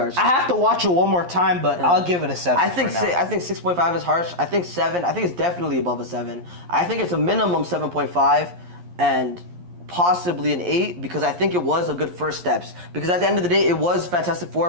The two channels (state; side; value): late; left; 11 ms